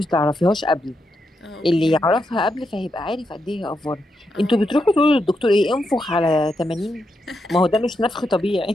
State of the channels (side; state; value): both; normal; correlation 0.83